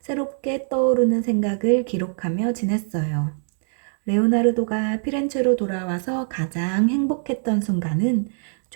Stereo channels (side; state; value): left; silent; digital silence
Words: 새롭게 떠오르는 생각을 기록하며 지냈어요. 레오나르도가 피렌체로 돌아와서 가장 행복했던 순간은